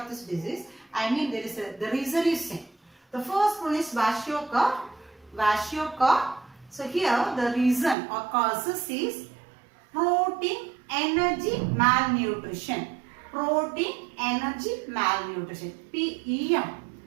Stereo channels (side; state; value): left; drops out; at 8.0 s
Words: this disease. I mean there is the reason is same. The first one is kwashiorkor. So here the reason or causes is protein energy malnutrition. Protein energy malnutrition. PEM.